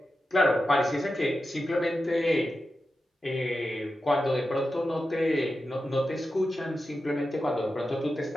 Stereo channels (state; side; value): normal; both; correlation 0.91